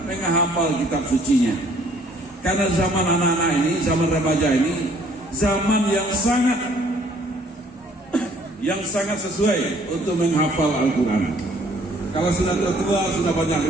menghafal kitab sucinya. Karena zaman anak-anak ini, zaman remaja ini, zaman yang sangat sesuai untuk menghafal Al-Quran. Kalau sudah tua sudah banyak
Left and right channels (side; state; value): both; normal; correlation 0.60